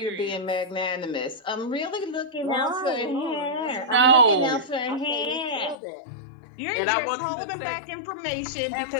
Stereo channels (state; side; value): drops out; right; at 5.8 s